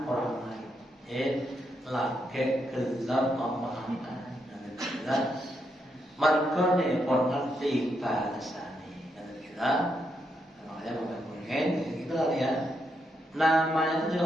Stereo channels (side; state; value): both; normal; correlation 0.80